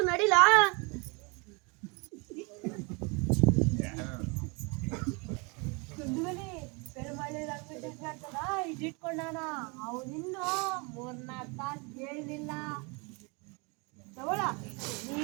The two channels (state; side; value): quieter; left; 30.4 dB